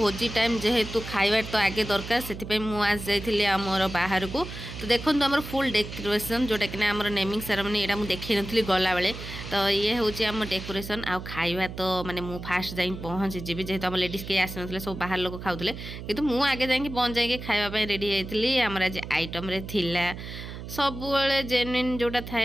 टाइम जेहेतु खाइबार तो आगे दरकार से मुझे जाइए आमर बाहर को तो देखो आम फुल डेकोरेशन जोटा कि आम नेमिंग सेरेमनी यहाँ मुझे देखी नी गला बेले तो ये हूँ आम डेकोरेशन आ खाइबा तो माने मु फास्ट जाई पहुँची जीवी जेहेतु आम लेडीज कहीं आसी ना सब बाहर लोग खाऊले कि मुझे आगे जाकि पहुँच जाए खावाई रेडी होती आमर आज आइटम थिला सब जेन्युइन जोटा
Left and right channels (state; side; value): noise; right; hum, 10 dB below the sound